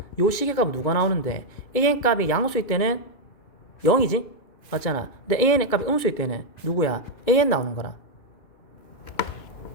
요 시계값은 누가 나오는데 an 값이 양수일 때는 0이지? 맞잖아. 근데 an 값이 음수일 때는 누구야? an 나오는 거라.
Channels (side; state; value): right; late; 2.3 ms